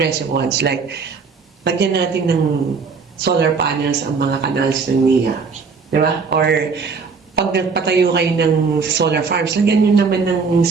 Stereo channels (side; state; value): left; quieter; 5.0 dB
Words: ones, like, lagyan natin ng solar panels ang mga canals ng NIA. Diba? Or, pag nagpatayo kayo ng solar farms, lagyan nyo naman ng